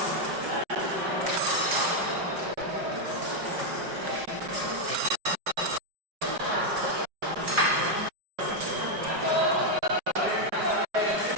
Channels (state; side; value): late; left; 5.3 ms